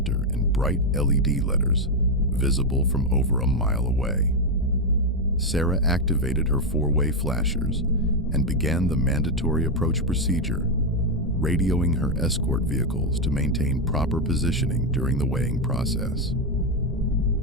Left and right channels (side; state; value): both; normal; correlation 0.04